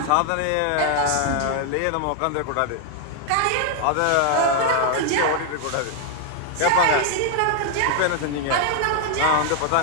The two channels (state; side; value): different; both; correlation 0.00